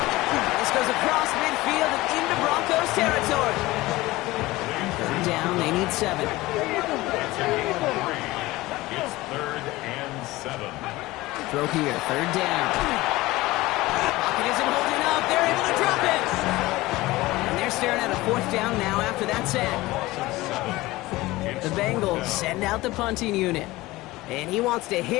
This goes across midfield and into Broncos territory. 3rd down, they need 7. It's 3rd and 7. Throw here, 3rd down. Pocket isn't holding up. They're able to drop it. And they're staring at a 4th down now after that sack. The Bengals send out the punting unit. And he wants to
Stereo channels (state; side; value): quieter; right; 19.2 dB